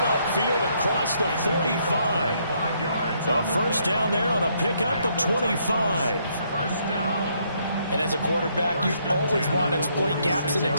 upfield across the 45. A first down there on a pickup of 25. And as a quarterback, you always want to exploit gaps in the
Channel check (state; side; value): inverted; both; correlation -0.72